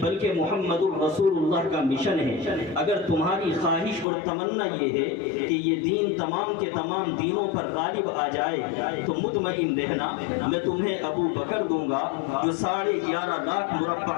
بلکہ محمد الرسول اللہ کا مشن ہے۔ اگر تمہاری خواہش اور تمنا یہ ہے کہ یہ دین تمام کے تمام دینوں پر غالب آ جائے تو مطمئن رہنا میں تمہیں ابو بکر دوں گا جو 11.5 لاکھ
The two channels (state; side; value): drops out; right; at 4.0 s